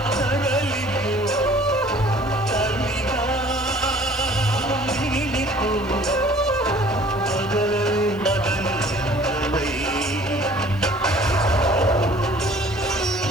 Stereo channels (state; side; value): noise; left; hiss, 26 dB below the sound